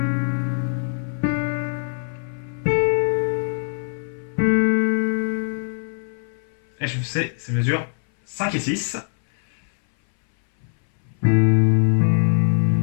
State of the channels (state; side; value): silent; right; 60 dB below the other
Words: Et je fais ces mesures 5 et 6.